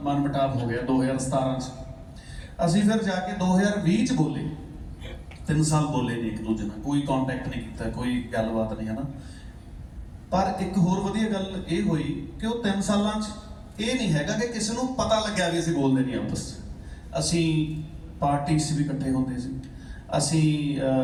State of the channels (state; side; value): identical; both; correlation 1.00